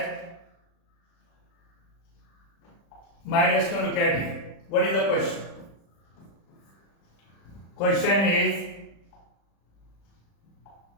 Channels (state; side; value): late; right; 35 ms